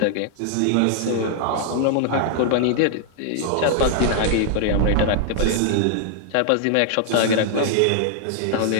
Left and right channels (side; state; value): both; different; correlation -0.01